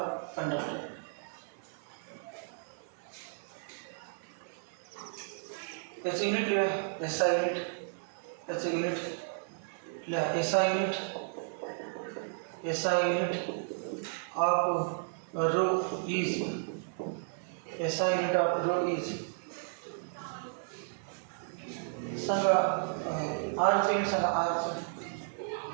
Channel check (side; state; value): left; silent; 55 dB below the other